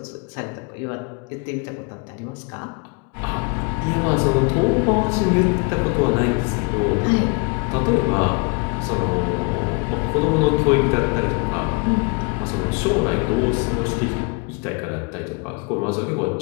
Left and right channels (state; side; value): quieter; right; 33.0 dB